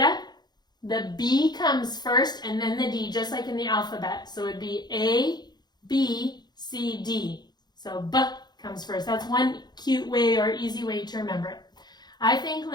the B comes first and then the D, just like in the alphabet. So it would be A, B, C, D. So B comes first. That's one cute way or easy way to remember it. I think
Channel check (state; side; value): late; right; 0.20 ms